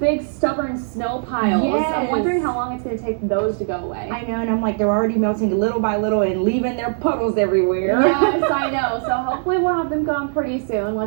stubborn snow piles. Yes. I'm wondering how long it's going to take those to go away. I know, and I'm like, they're already melting little by little and leaving their puddles everywhere. Yes, I know. So hopefully we'll have them gone pretty soon.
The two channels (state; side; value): silent; left; 61 dB below the other